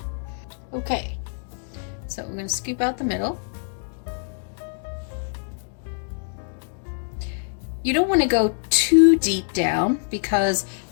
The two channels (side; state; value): right; silent; digital silence